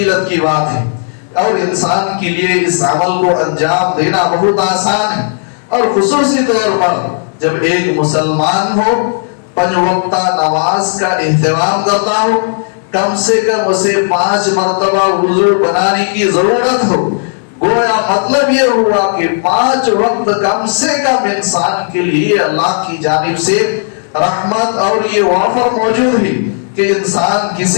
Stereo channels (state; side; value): silent; right; digital silence